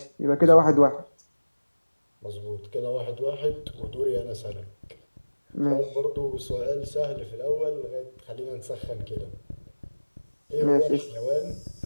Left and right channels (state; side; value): inverted; both; correlation -1.00